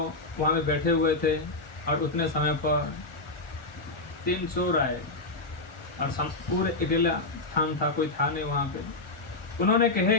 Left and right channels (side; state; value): right; quieter; 3.1 dB